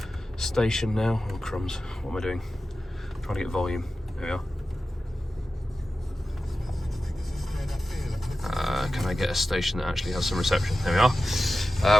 station now. Oh, crumbs. What am I doing? Trying to get volume. There we are. Can I get a station that actually has some reception? There we are.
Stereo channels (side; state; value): both; normal; correlation 0.94